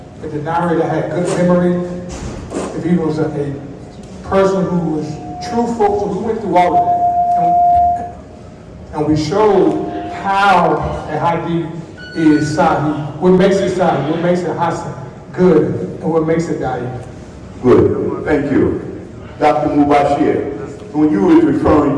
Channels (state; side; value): identical; both; correlation 1.00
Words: If the narrator had good memory, if he was a person who was truthful, so we went through all of that. And we showed how a hadith is sahih, what makes it sahih, what makes it hasan, good, and what makes it da'if. Good, thank you. Dr. Mubashir, when you were